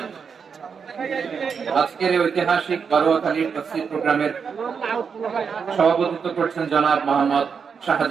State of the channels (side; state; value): left; quieter; 6.2 dB